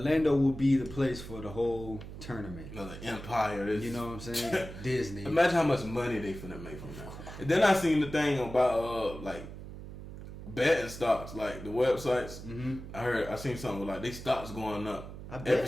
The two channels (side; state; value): right; noise; hum, 12 dB below the sound